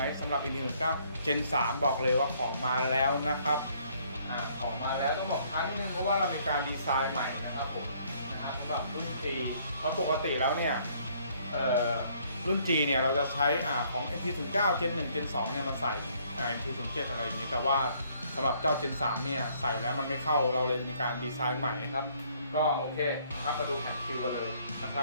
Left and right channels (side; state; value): both; inverted; correlation -0.64